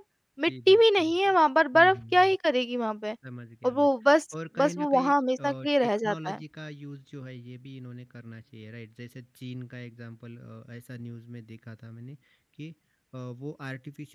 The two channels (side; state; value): both; identical; correlation 1.00